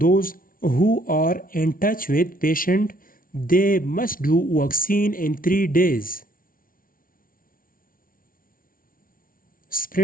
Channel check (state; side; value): late; right; 0.41 ms